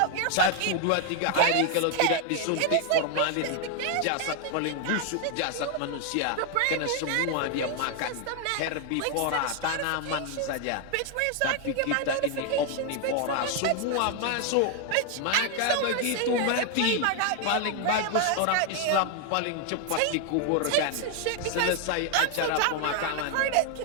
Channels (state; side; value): different; both; correlation 0.00